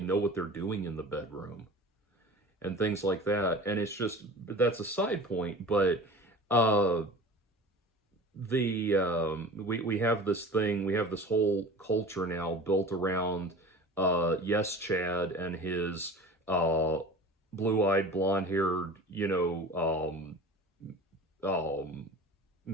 know what they're doing in the bedroom and things like that. And it's just, that's a side point, but we have this thing, we have this whole culture now built around Yes Chad and his blue-eyed, blonde-haired,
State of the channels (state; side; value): normal; both; correlation 0.38